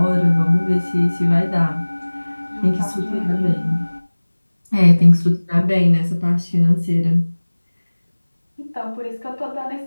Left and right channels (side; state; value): both; inverted; correlation -1.00